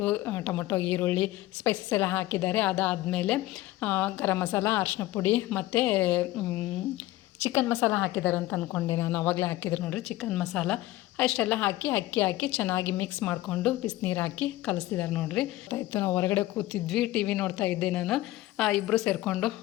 ಟೊಮೊಟೊ, ಈರುಳ್ಳಿ, ಸ್ಪೈಸಸ್ ಎಲ್ಲ ಹಾಕಿದ್ದಾರೆ. ಅದಾದಮೇಲೆ ಗರಂ ಮಸಾಲ, ಅರಿಶಿನ ಪುಡಿ ಮತ್ತು ಚಿಕನ್ ಮಸಾಲ ಹಾಕಿದ್ದಾರೆ ಅಂತ ಅಂದ್ಕೊಂಡೆ ನಾನು. ಆವಾಗಲೇ ಹಾಕಿದ್ರು ನೋಡಿರಿ ಚಿಕನ್ ಮಸಾಲ. ಅಷ್ಟೆಲ್ಲ ಹಾಕಿ ಅಕ್ಕಿ ಹಾಕಿ ಚೆನ್ನಾಗಿ ಮಿಕ್ಸ್ ಮಾಡಿಕೊಂಡು ಬಿಸಿನೀರು ಹಾಕಿ ಕಲಿಸ್ತಿದ್ದಾರೆ ನೋಡಿರಿ. ಆಯಿತು, ನಾವು ಹೊರಗಡೆ ಕೂತಿದ್ವಿ, ಟಿ ವಿ ನೋಡ್ತಾ ಇದ್ದೆ ನಾನು. ಇಬ್ಬರು ಸೇರಿಕೊಂಡು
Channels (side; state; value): right; quieter; 16.7 dB